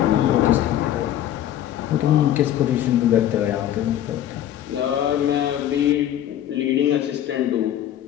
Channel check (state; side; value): quieter; right; 11.6 dB